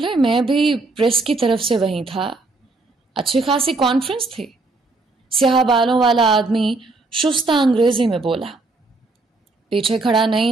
میں بھی پریس کی طرف سے وہیں تھا۔ اچھی خاصی کانفرنس تھی۔ سیاہ بالوں والا آدمی شستہ انگریزی میں بولا۔ پیچھے کھڑا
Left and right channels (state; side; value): quieter; left; 3.5 dB